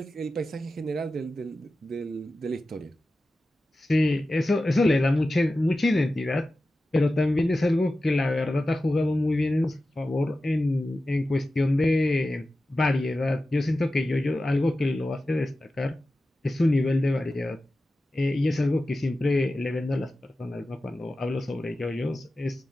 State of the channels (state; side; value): normal; both; correlation 0.94